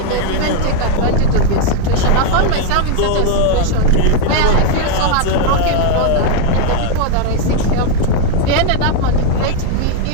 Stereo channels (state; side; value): different; both; correlation 0.00